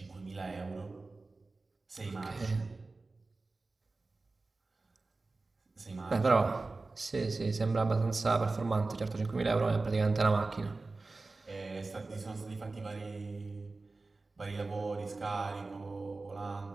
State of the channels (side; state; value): left; quieter; 3.5 dB